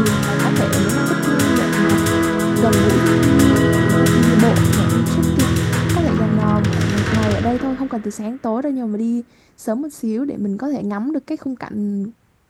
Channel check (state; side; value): identical; both; correlation 1.00